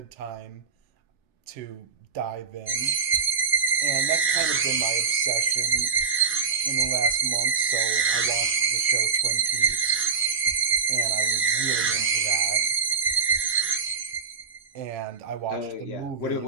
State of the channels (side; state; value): left; quieter; 5.3 dB